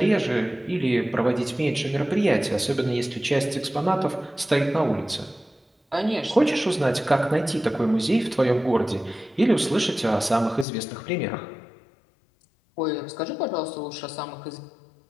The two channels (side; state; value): right; drops out; at 10.7 s